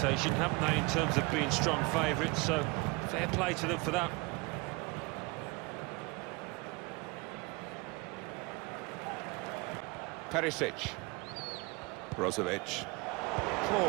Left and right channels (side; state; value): left; quieter; 27.2 dB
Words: haven't they, in terms of being strong favourites, so fair play to them for that. Perisic. Brozovic.